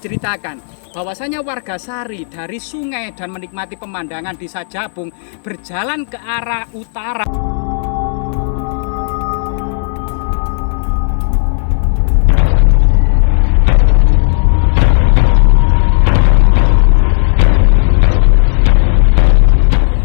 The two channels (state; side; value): silent; right; digital silence